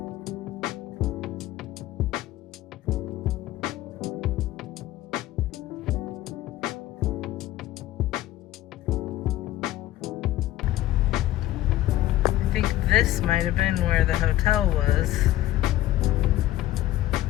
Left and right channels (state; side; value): quieter; right; 14.7 dB